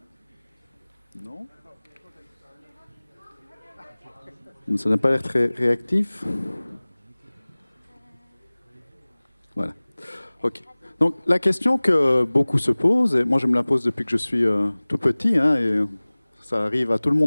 Non ? Ça n'a pas l'air très réactif. Voilà. OK. Donc, la question que beaucoup se posent, et moi je me la pose depuis que je suis tout petit, hein, et ça arrive à tout le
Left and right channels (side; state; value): both; inverted; correlation -1.00